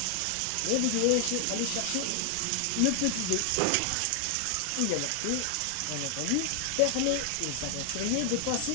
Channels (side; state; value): both; different; correlation 0.00